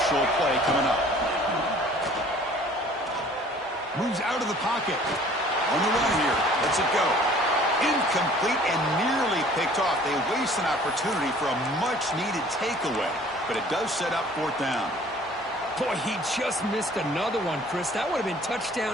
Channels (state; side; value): normal; both; correlation 0.52